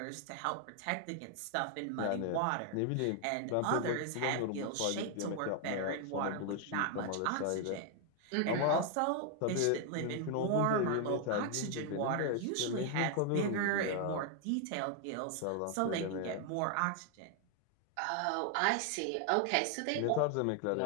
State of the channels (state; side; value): different; both; correlation 0.00